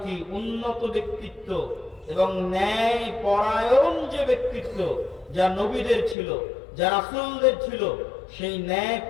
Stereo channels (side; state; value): right; drops out; at 6.2 s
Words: উন্নত ব্যক্তিত্ব এবং ন্যায় পরায়ণ যে ব্যক্তিত্ব যা নবীদের ছিল, যা রাসূলদের ছিল, সেই ন্যায়